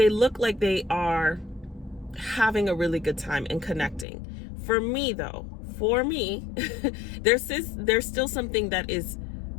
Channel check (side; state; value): right; drops out; at 4.0 s